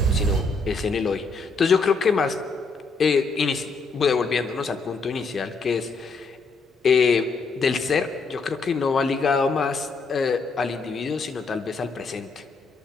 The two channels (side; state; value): right; quieter; 4.1 dB